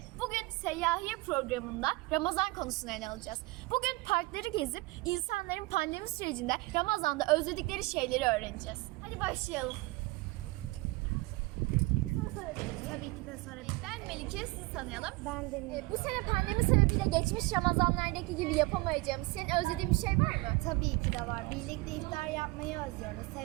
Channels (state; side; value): quieter; left; 22.8 dB